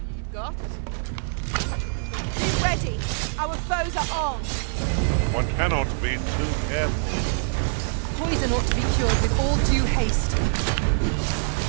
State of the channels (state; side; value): silent; left; digital silence